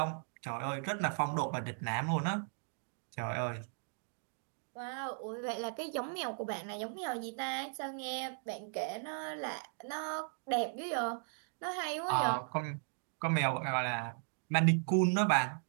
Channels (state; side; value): silent; left; 53 dB below the other